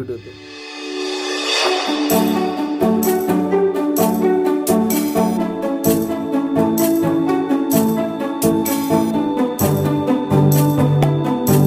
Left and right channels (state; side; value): identical; both; correlation 1.00